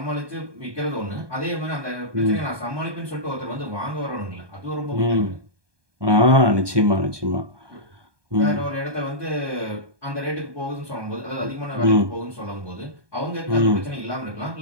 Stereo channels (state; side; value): late; left; 1.2 ms